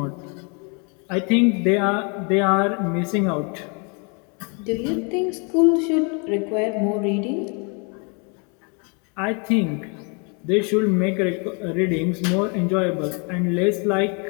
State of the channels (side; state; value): right; quieter; 35.1 dB